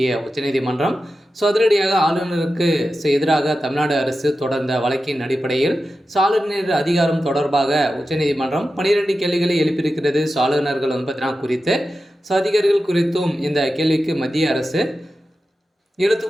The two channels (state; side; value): normal; both; correlation 0.92